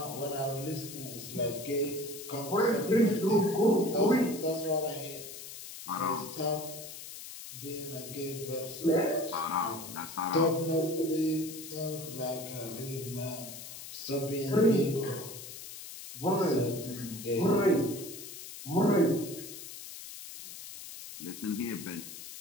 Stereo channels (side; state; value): left; noise; hiss, 12 dB below the sound